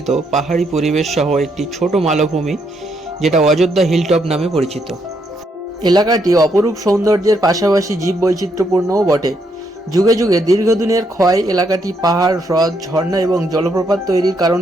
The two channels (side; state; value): both; normal; correlation 0.76